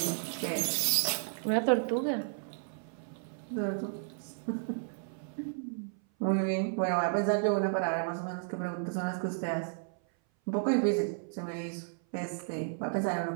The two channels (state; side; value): silent; left; 56 dB below the other